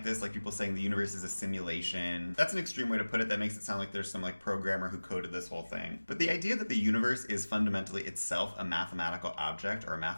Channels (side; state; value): both; inverted; correlation -1.00